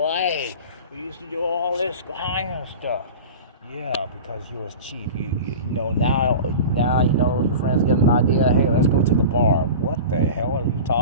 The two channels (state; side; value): inverted; both; correlation -0.33